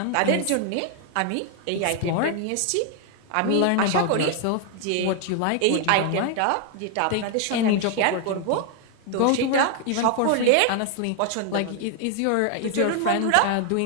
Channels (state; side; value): different; both; correlation 0.00